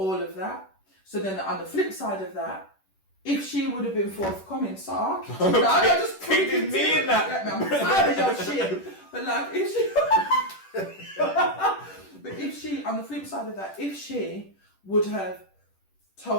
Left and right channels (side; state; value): right; late; 10 ms